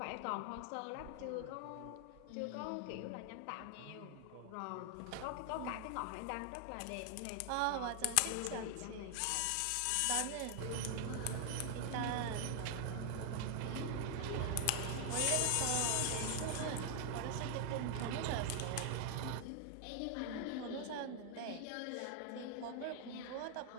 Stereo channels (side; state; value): both; different; correlation 0.00